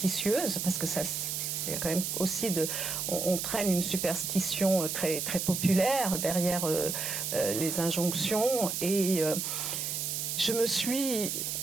parce que ça... Il y a quand même aussi on traîne une superstition très, très populaire derrière les injonctions. Et je me suis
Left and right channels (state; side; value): noise; right; hiss, 2 dB below the sound